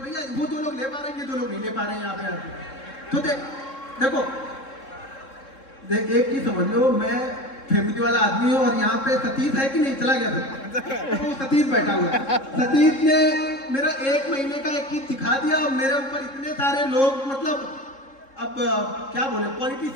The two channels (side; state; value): right; late; 3.7 ms